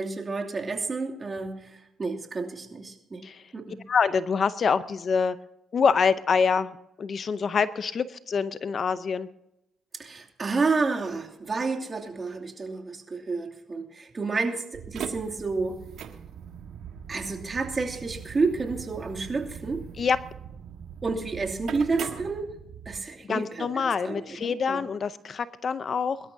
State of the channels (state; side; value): normal; both; correlation 0.83